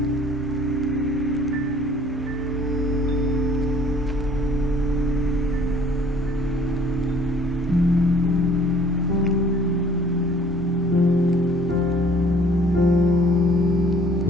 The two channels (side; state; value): both; normal; correlation 0.55